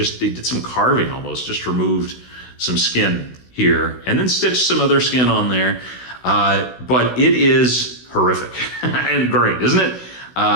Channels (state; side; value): late; right; 16 ms